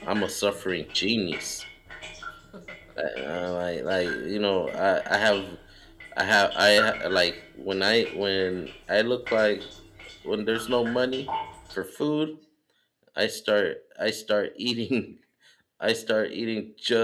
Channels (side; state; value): both; identical; correlation 1.00